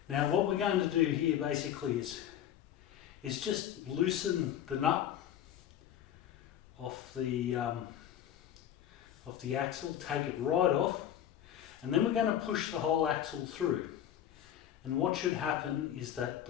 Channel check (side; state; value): right; quieter; 10.6 dB